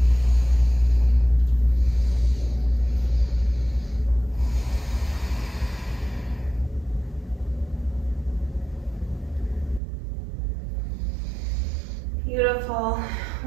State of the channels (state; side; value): drops out; left; at 9.8 s